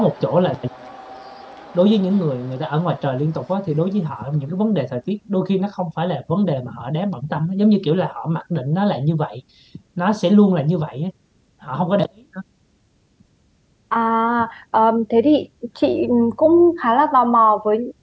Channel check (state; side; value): identical; both; correlation 1.00